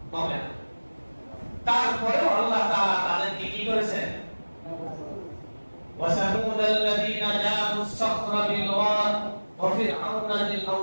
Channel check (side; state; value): both; inverted; correlation -1.00